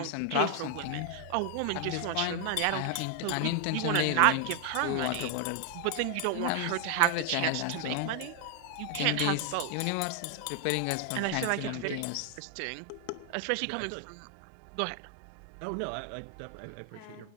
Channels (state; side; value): different; both; correlation 0.00